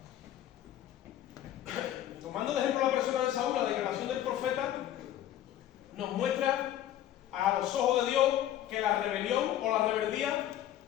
Tomando de ejemplo la persona de Saúl, la declaración del profeta nos muestra a los ojos de Dios que la rebelión o la rebeldía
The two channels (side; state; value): right; quieter; 12.1 dB